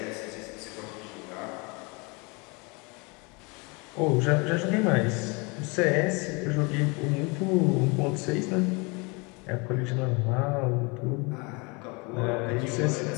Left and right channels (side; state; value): right; quieter; 29.2 dB